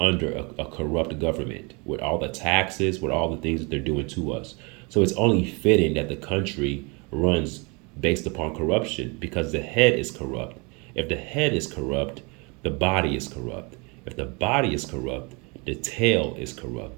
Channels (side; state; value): left; quieter; 30.3 dB